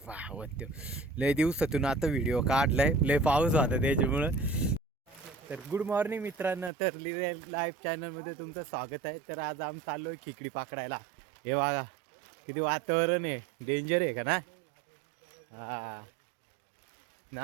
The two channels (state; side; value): drops out; left; at 6.7 s